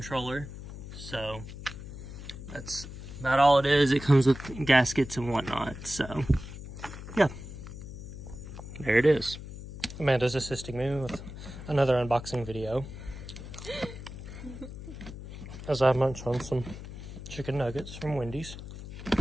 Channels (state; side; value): noise; left; hum, 11 dB below the sound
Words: So that's about all it is. It comes with gaskets and whatnot. So yeah, there it is. Amanda's assisting me with another unboxing video as I munch on some chicken nuggets from Wendy's.